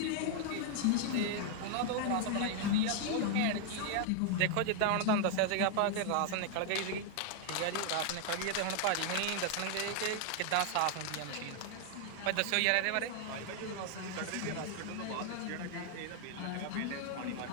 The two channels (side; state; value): both; different; correlation 0.00